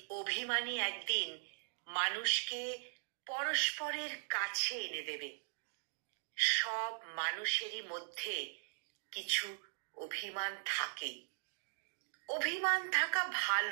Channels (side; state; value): left; silent; digital silence